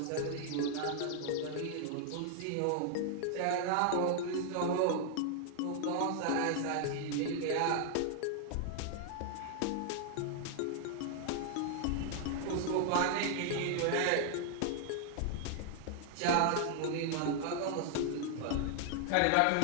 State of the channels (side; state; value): both; different; correlation 0.00